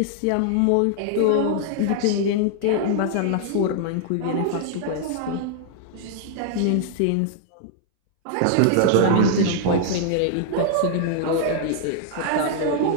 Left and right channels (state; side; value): different; both; correlation -0.01